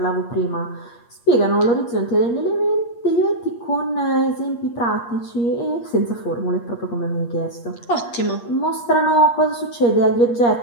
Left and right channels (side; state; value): right; late; 8.5 ms